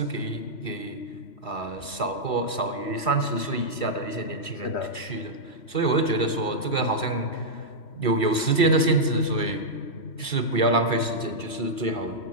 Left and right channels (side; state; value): right; late; 3.1 ms